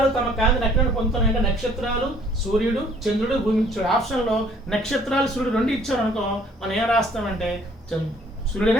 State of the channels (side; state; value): both; normal; correlation 0.59